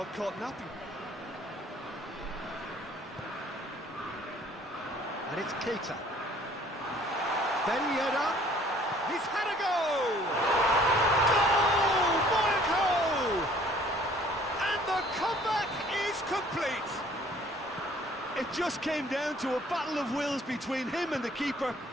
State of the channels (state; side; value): normal; both; correlation 0.56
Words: caught napping. And it's Keita. Ben Yedder. He's had a go! Goal! Monaco! And the comeback is complete. It just came down to a battle of wills between him and the keeper,